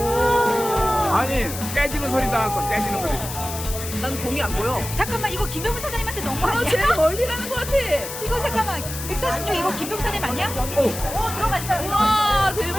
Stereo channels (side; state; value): left; noise; hiss, 8 dB below the sound